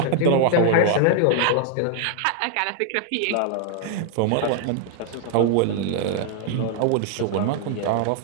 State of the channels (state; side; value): different; both; correlation 0.00